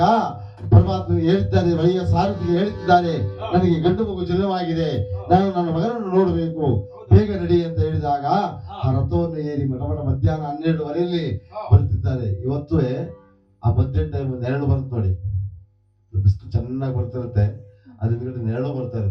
ಪರಮಾತ್ಮ ಹೇಳಿದ್ದಾರೆ, ಬಳಿಯ ಸಾರಥಿಗೆ ಹೇಳುತ್ತಿದ್ದಾರೆ, ನನಗೆ ಗಂಡು ಮಗು ಜನವಾಗಿದೆ, ನಾನು ನನ್ನ ಮಗನನ್ನು ನೋಡಬೇಕು, ಬೇಗ ನಡಿ ಅಂತ ಹೇಳಿದಾಗ ಆ ರಥವನ್ನು ಏರಿ ಮಧ್ಯಾಹ್ನ 12:30 ಬರುತ್ತಿದ್ದಾರೆ. ಇವತ್ತು ಆ ಮಧ್ಯಾಹ್ನ ಟೈಮ್ ನೆರಳು ಬರುತ್ತೆ ನೋಡಿ, ಬಿಸಿಲು ಚೆನ್ನಾಗಿ ಬರ್ತಿರುತ್ತೆ, ಅದ್ರ ನೆರಳು ಬರ್ತಾ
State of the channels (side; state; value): both; identical; correlation 1.00